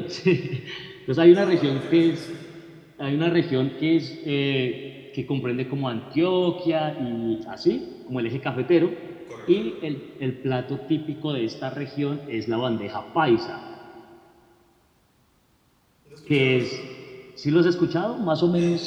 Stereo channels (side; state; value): both; identical; correlation 1.00